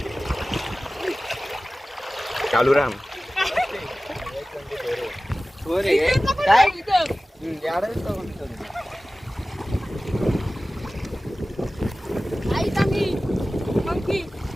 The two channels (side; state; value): both; normal; correlation 0.97